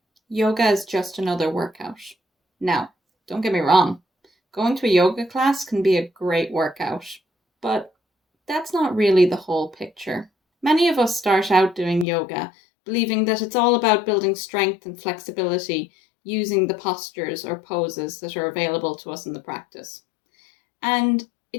yoga is just another workout. Now, don't get me wrong, going to a yoga class can be a great workout, but that's not really the whole picture. Many of us start out doing yoga believing that it's all about building strength and flexibility using the postures or poses that are available to us in the practice. And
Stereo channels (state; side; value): drops out; right; at 12.1 s